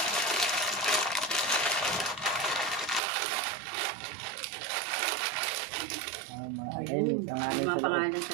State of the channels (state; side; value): drops out; left; at 3.0 s